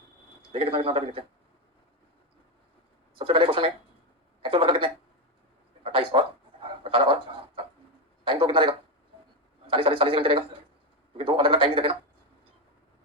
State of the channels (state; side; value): normal; both; correlation 0.10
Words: देखिए कितना कितना देखते हैं। सबसे पहले क्वेश्चन में एक्चुअल वर्कर कितने? 28 और 18 और 7। टाइम तो कितना रहेगा? 40 घंटे रहेगा, क्योंकि 2 अलग अलग टाइम नहीं देते ना।